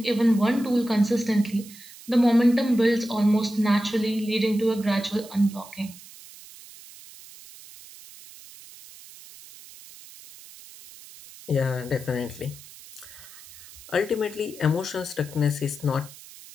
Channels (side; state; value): right; noise; hiss, 19 dB below the sound